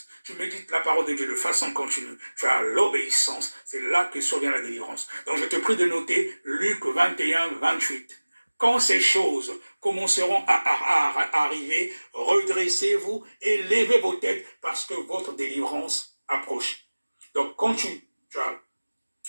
tu médites la parole de Dieu de façon continue, tu as l'obéissance, c'est là que survient la délivrance. Donc je te prie de noter Luc 21-28. quand ces choses commenceront à arriver, redressez-vous et levez vos têtes parce que votre délivrance approche. Donc, quand tu as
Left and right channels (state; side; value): inverted; both; correlation -1.00